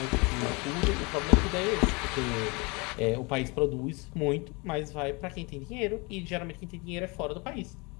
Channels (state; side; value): quieter; right; 28.3 dB